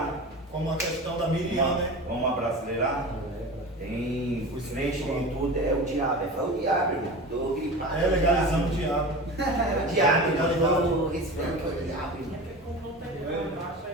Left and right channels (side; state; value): both; normal; correlation 0.32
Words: Como a questão da Miriam, né? Vamos abrasileirar? Tem os crentes em tudo, é o diabo. É o diabo, irmão. Tô gripado. É legalizando o diabo. É o diabo, irmão. Eu respeito que é o diabo, irmão.